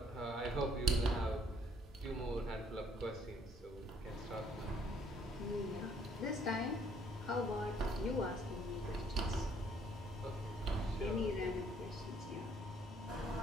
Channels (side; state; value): both; normal; correlation 0.64